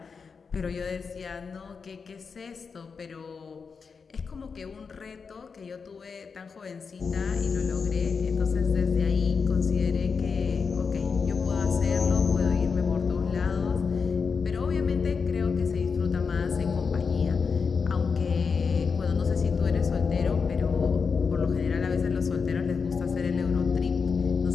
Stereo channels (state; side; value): quieter; right; 5.4 dB